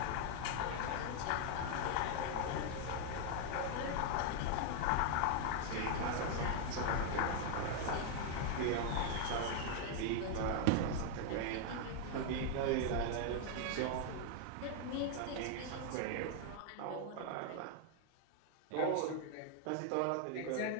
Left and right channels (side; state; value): both; different; correlation 0.00